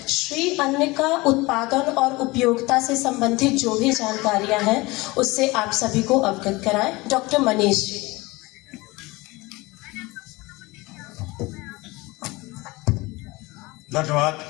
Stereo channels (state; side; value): quieter; right; 22.5 dB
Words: श्री अन्न का उत्पादन और उपयोगिता से संबंधित जो भी जानकारियाँ हैं उससे आप सभी को अवगत कराएं। डॉक्टर मनीष जी। धन्यवाद